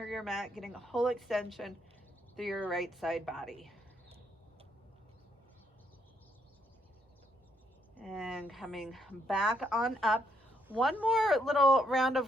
of your mat, getting a whole extension through your right side body. And coming back on up. One more little round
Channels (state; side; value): normal; both; correlation 0.73